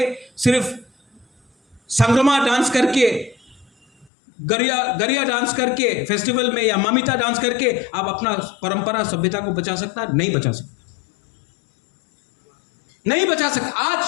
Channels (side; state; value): right; drops out; at 4.1 s